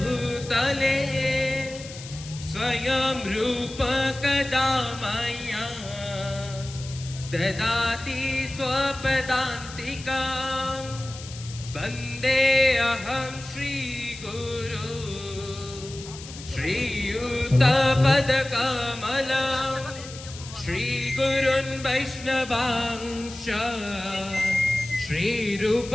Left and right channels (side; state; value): left; noise; hiss, 14 dB below the sound